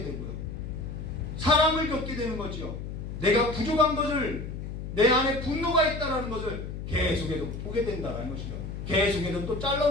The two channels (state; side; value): noise; left; hum, 7 dB below the sound